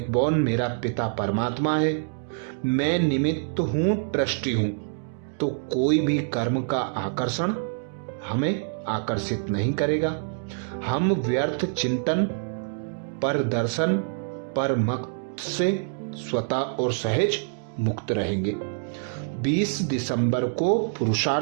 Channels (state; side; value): silent; left; digital silence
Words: मेरा पिता परमात्मा है। मैं निमित्त हूं, ट्रस्टी हूं, तो कोई भी कर्म का आकर्षण हमें आकर्षित नहीं करेगा। हम व्यर्थ चिंतन, पर दर्शन, पर मत से स्वतः और सहज मुक्त रहेंगे। 20 दिसंबर को